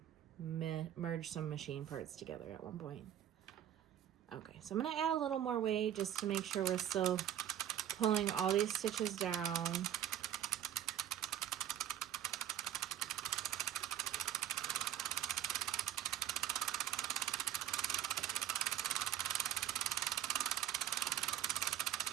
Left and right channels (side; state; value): left; quieter; 11.1 dB